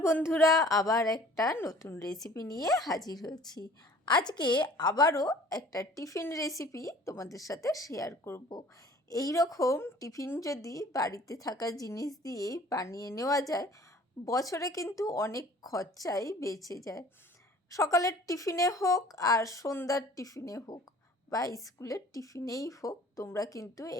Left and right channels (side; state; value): both; normal; correlation 0.50